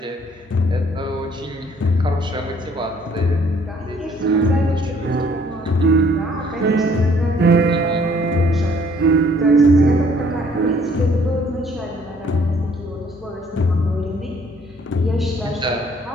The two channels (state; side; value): normal; both; correlation 0.61